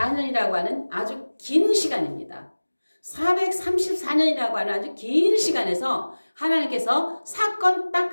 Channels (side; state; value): both; inverted; correlation -1.00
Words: 하는 아주 긴 시간입니다. 434년이라고 하는 아주 긴 시간에서 하나님께서 사건 딱